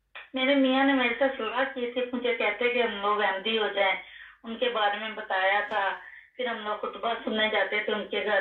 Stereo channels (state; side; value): identical; both; correlation 1.00